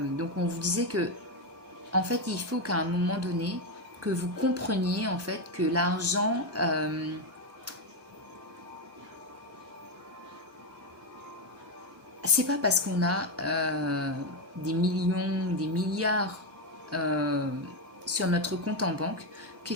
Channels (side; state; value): both; normal; correlation 0.08